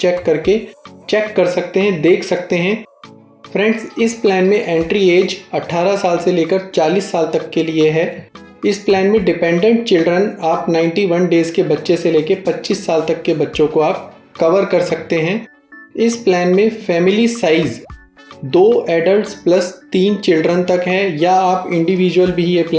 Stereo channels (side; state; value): both; identical; correlation 1.00